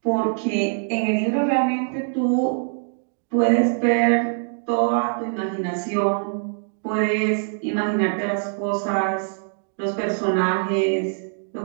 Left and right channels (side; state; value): left; silent; digital silence